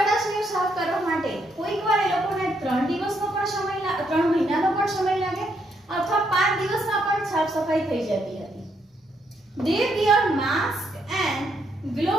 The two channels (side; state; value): both; normal; correlation 0.75